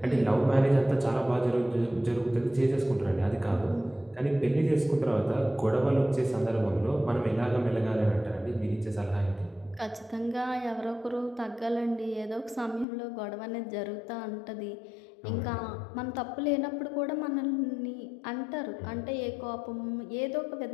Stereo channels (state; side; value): drops out; right; at 12.9 s